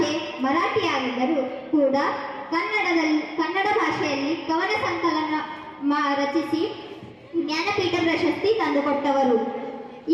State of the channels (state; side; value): identical; both; correlation 1.00